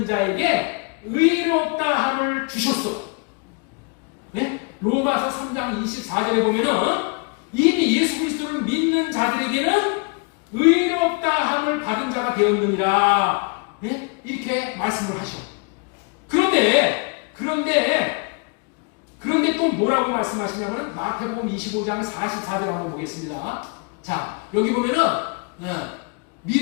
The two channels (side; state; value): right; quieter; 33.6 dB